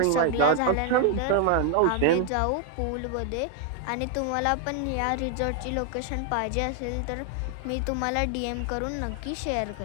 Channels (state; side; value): different; both; correlation 0.00